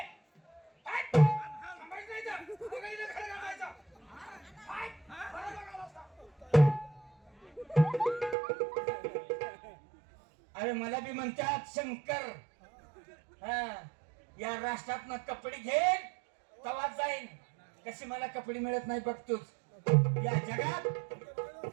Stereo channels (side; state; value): left; drops out; at 8.3 s